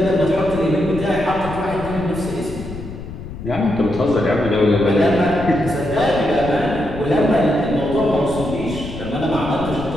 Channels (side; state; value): left; noise; rumble, 11 dB below the sound